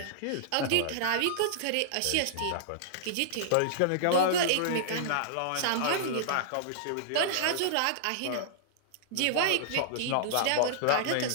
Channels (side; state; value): both; different; correlation -0.02